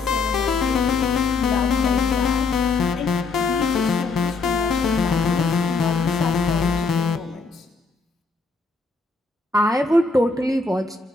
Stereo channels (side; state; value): right; quieter; 4.1 dB